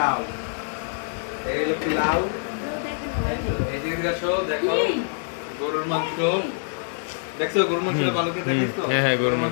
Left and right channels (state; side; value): silent; right; 60 dB below the other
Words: এই হলো পোলাও। এই যে দেখো গরুর মাংস, দেখছো গরুর মাংস ভালো করে দেখছো? হ্যাঁ, গরুর